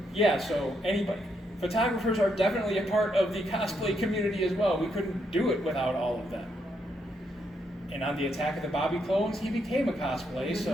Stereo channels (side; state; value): both; normal; correlation 0.77